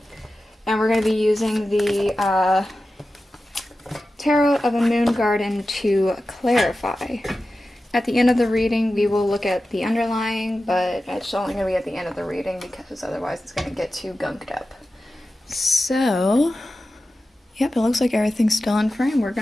And we're going to be using the Tarot of a Moon Garden to clarify. At the end of the reading, we will look at the underlying, but it's only going to be at the end of the reading because otherwise it's going to get too gunked up. So, yep, it looks like everything's still in frame. We're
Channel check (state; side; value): normal; both; correlation 0.93